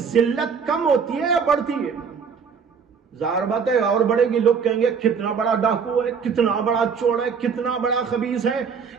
ذلت کم ہوتی ہے یا بڑھتی ہے؟ ظاہر بات ہے اور بڑھے گی، لوگ کہیں گے کتنا بڑا ڈاکو ہے، کتنا بڑا چور ہے، کتنا بڑا خبیث ہے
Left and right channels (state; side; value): quieter; left; 6.1 dB